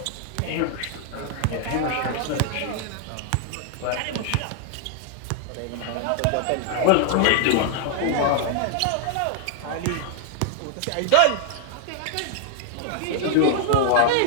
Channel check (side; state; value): both; different; correlation 0.00